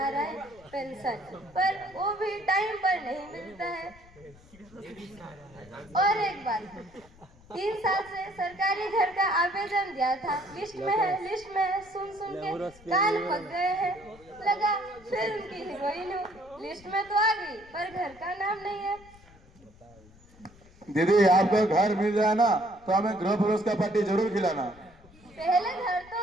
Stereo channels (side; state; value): left; noise; rumble, 25 dB below the sound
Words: है पेंशन, पर वो भी टाइम पर नहीं मिलता है। और एक बात, 3 साल से सरकारी घर का आवेदन दिया था, लिस्ट में है, सुन के कान पक गए हैं। लगा फिल्म की हीरोइन हूँ, लिस्ट में तो आ गई पर घर का नाम नहीं है। दीदी आपको घर मिल जाए ना तो हमें गृह प्रवेश का पार्टी जरूर खिलाना। पहले घर